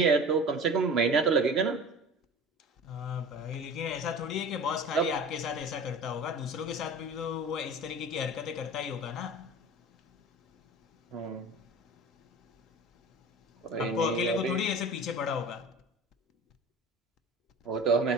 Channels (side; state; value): both; normal; correlation 0.37